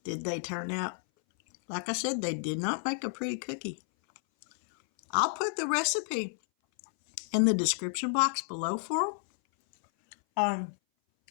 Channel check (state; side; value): silent; right; 57 dB below the other